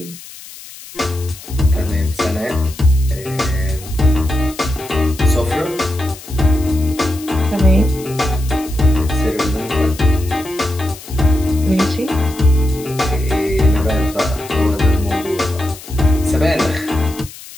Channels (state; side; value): noise; left; hiss, 16 dB below the sound